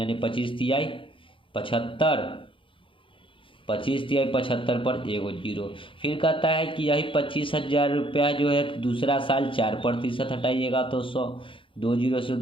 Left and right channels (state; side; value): late; right; 0.25 ms